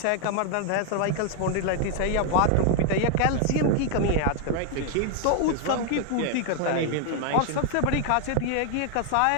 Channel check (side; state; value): both; different; correlation 0.00